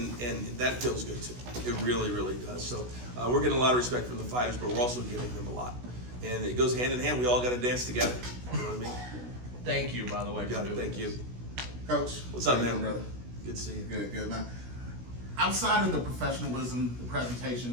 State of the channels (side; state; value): left; late; 16 ms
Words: that feels good too. It really, really does. So we're getting a lot of respect from the fighters, but we're also giving them a lot. And it goes hand in hand. We all got to dance together. You know what I mean? Thank you, by the way. You got it. Thank you. Coach. What's up, how you man? doing, brother? Good to see you. Good, man. Outside of the professionalism, the